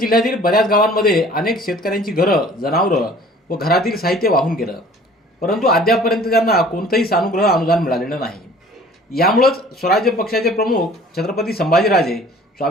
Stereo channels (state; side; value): normal; both; correlation 0.50